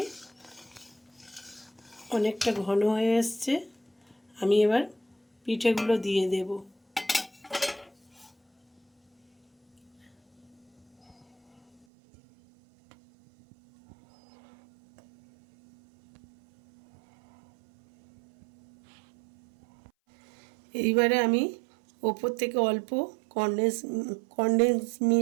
অনেকটা ঘন হয়ে এসছে। আমি এবার পিঠেগুলো দিয়ে দেব। এইবারে আমি ওপর থেকে অল্প কনডেন্স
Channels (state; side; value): drops out; left; at 11.9 s